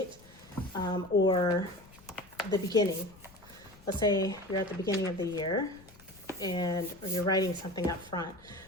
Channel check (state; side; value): noise; left; rumble, 24 dB below the sound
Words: or the beginning, let's say you're at the beginning of the year and or you're writing something up front,